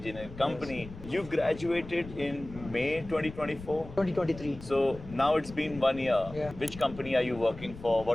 company. Yes. You graduated in May 2024? 2023. So now it's been 1 year. Yeah. Which company are you working for?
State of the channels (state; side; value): noise; left; rumble, 15 dB below the sound